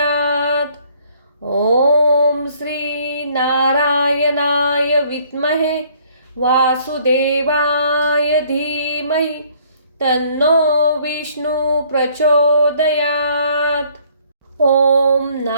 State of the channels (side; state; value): both; inverted; correlation -0.61